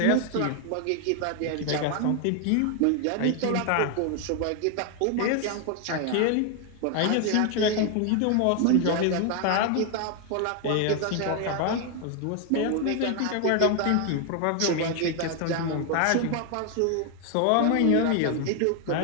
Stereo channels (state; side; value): different; both; correlation 0.01